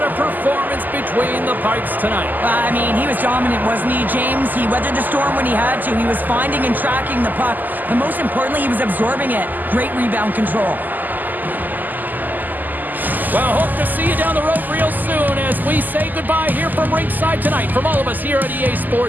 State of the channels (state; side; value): late; left; 0.085 ms